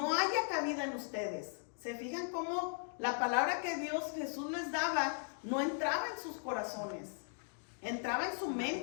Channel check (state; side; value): silent; right; 52 dB below the other